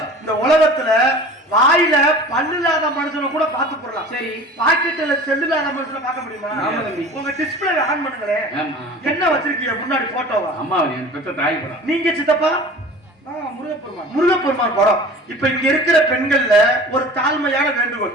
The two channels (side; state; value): both; normal; correlation 0.41